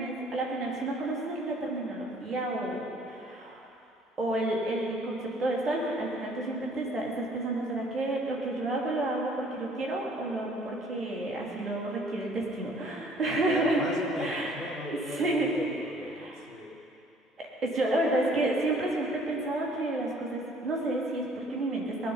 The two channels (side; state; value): both; normal; correlation 0.57